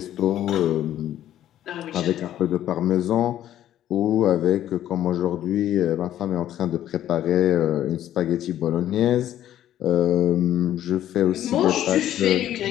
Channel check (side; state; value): right; quieter; 12.0 dB